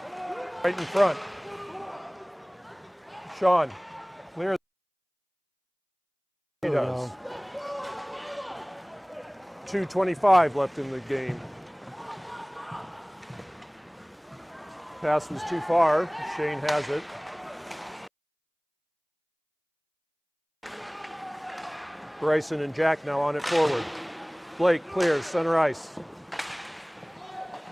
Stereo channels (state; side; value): identical; both; correlation 1.00